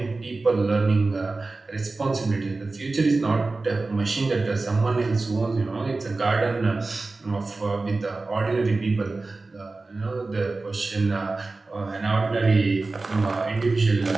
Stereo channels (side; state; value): left; quieter; 3.5 dB